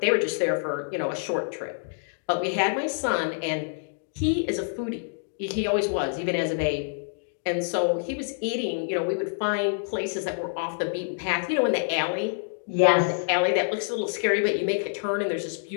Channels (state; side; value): silent; right; digital silence